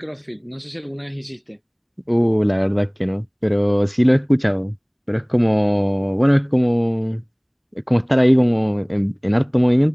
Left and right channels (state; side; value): identical; both; correlation 1.00